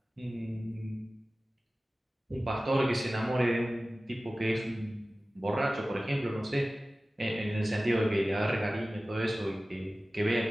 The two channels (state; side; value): normal; both; correlation 0.96